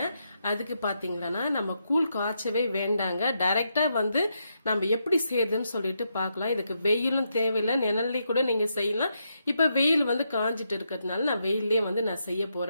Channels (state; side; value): inverted; both; correlation -0.81